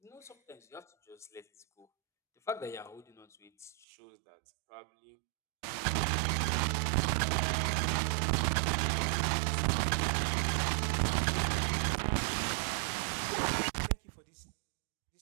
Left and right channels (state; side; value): drops out; left; at 3.9 s